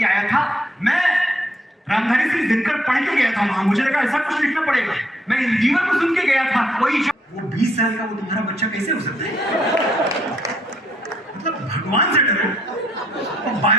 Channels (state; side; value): normal; both; correlation 0.71